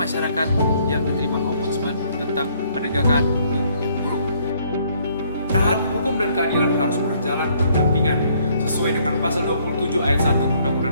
yang diterima Ombudsman tentang penegakan hukum yang buruk. Hukum dan keadilan harus berjalan berdampingan sesuai dengan pasal 27 ayat 1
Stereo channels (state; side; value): inverted; both; correlation -0.65